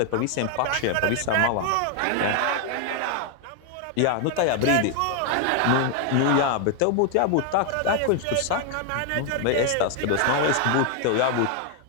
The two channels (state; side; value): different; both; correlation 0.00